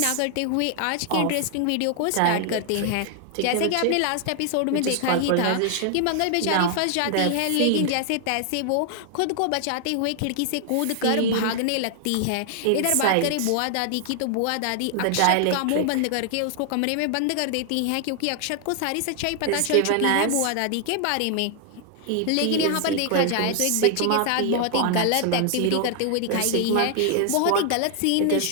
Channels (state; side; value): different; both; correlation 0.00